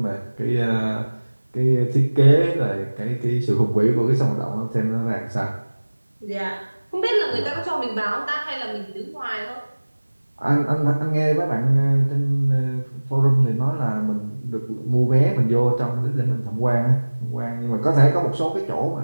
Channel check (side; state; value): both; inverted; correlation -1.00